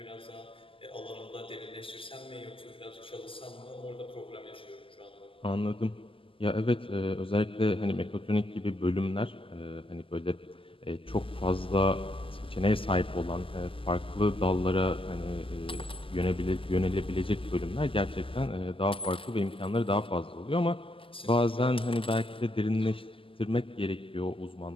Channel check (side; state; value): right; late; 0.26 ms